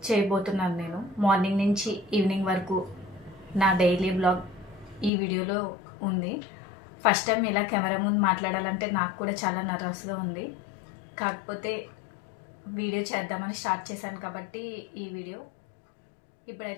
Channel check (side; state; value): right; drops out; at 5.1 s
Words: చేయబోతున్నాను. నేను మార్నింగ్ నుంచి ఈవినింగ్ వరకు నా డైలీ బ్లాగ్ ఈ వీడియోలో ఉంది. ఫస్ట్ టైం ఇలా కెమెరా ముందు మాట్లాడాలంటే నాకు కూడా చాలా నర్వస్గా ఉంది. కాకపోతే వీడియో చేద్దామని స్టార్ట్ చేశాను కాబట్టి ఈ వీడియో.